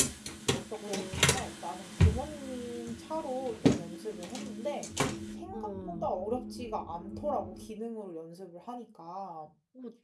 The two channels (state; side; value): identical; both; correlation 1.00